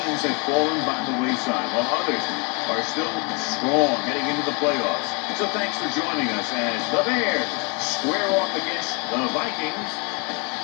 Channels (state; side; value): quieter; right; 30.6 dB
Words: have fallen by the wayside, while others are still strong heading into the playoffs. So thanks for joining us as the Bears square off against the Vikings.